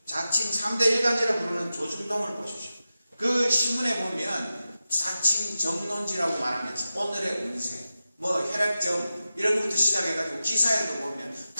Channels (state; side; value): inverted; both; correlation -0.92